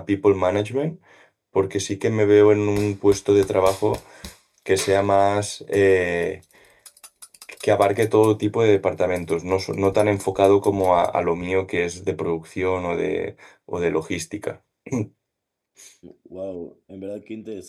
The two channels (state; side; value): identical; both; correlation 1.00